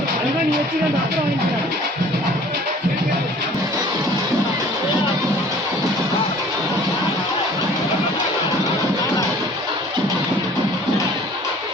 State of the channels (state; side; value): normal; both; correlation 0.50